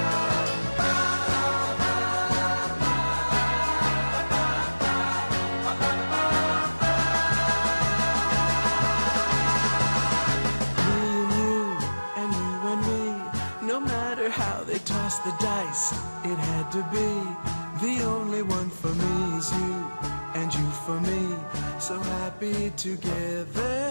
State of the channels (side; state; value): both; inverted; correlation -1.00